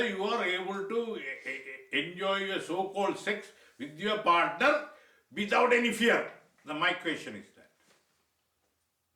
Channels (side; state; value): both; identical; correlation 1.00